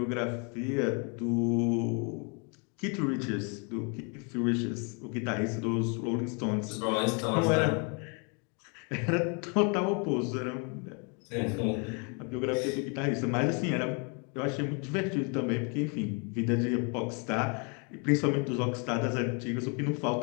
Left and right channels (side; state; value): right; quieter; 35.9 dB